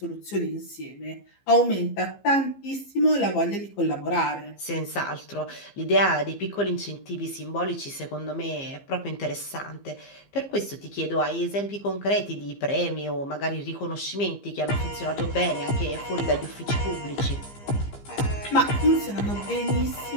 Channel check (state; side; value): late; right; 15 ms